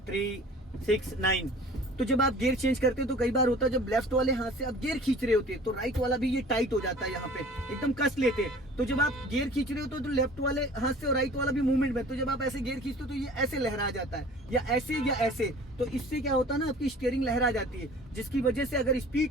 3, 6, 9। तो जब आप गियर चेंज करते हो तो कई बार होता है जब लेफ्ट वाले हाथ से आप गियर खींच रहे होते हैं तो राइट वाला भी ये टाइट हो जाता है, यहाँ पे एकदम कस लेते हैं। तो जब आप गियर खींच रहे हो तो लेफ्ट वाले हाथ से और राइट वाला भी मूवमेंट में, तो जब आप ऐसे गियर खींचते हो तो ये ऐसे लहरा जाता है या ऐसे। तो इससे क्या होता है ना, आपकी स्टीयरिंग लहरा जाती है, जिसकी वजह से अगर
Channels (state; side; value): normal; both; correlation 0.46